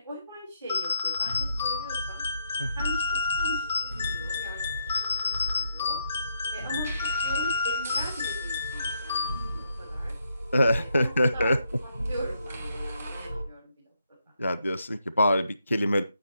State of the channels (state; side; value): inverted; both; correlation -0.76